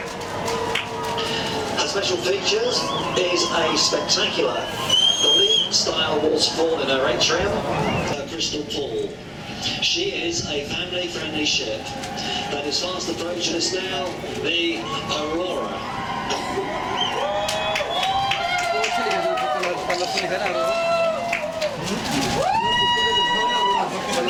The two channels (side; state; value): both; identical; correlation 1.00